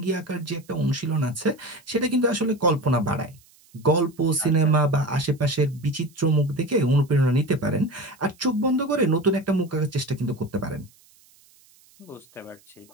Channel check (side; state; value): right; noise; hiss, 29 dB below the sound